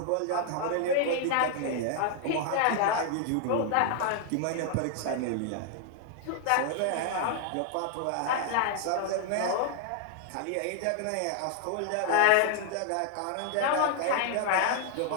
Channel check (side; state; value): both; different; correlation 0.00